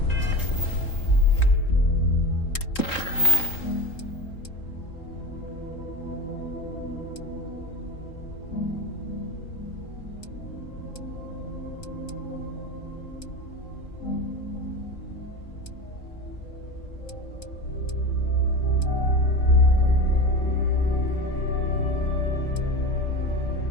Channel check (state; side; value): late; right; 3.8 ms